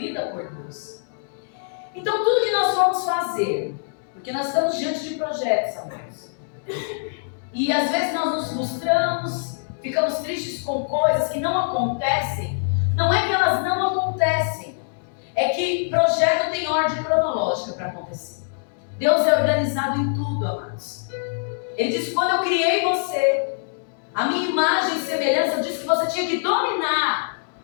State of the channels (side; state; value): right; silent; digital silence